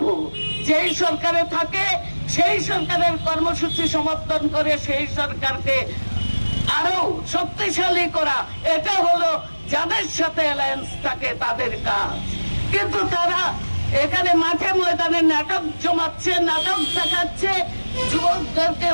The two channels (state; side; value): inverted; both; correlation -1.00